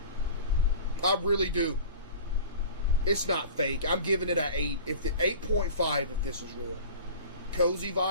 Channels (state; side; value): inverted; both; correlation -0.39